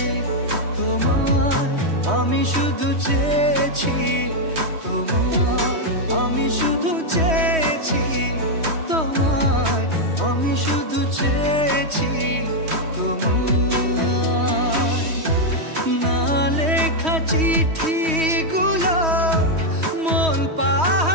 তোমায়, আমি শুধু চেয়েছি তোমায়, আমি শুধু চেয়েছি তোমায়, আমি শুধু চেয়েছি তোমায়। না লেখা চিঠিগুলো মন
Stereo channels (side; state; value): left; late; 3.1 ms